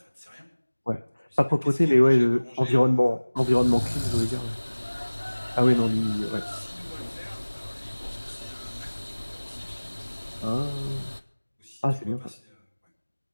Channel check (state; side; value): inverted; both; correlation -1.00